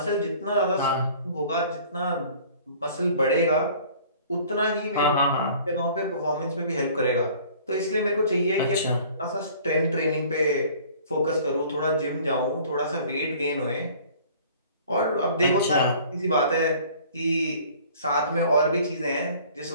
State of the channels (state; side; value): inverted; both; correlation -0.51